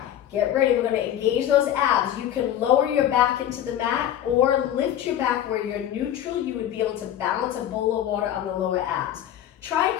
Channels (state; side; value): quieter; right; 11.1 dB